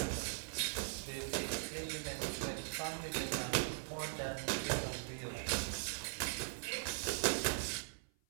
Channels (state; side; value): silent; left; 51 dB below the other